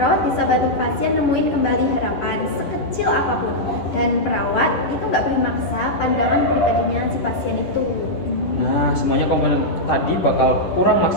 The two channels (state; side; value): late; right; 10 ms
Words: bisa bantu pasien nemuin kembali harapan sekecil apapun, dan perawat itu nggak boleh maksa pandangan pribadinya si pasien itu. Nah, semuanya komponen tadi bakal kurang